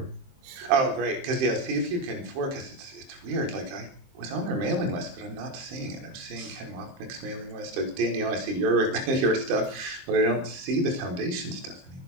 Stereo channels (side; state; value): left; late; 22 ms